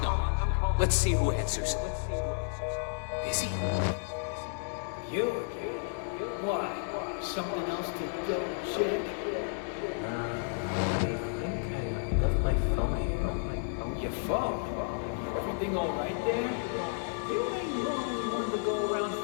number. Let's see who answers. Busy? You again? Why? Something else to double check? Nah, I think I left my phone here. Your phone? Everything all right there? You ain't normally one to go around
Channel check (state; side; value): silent; right; digital silence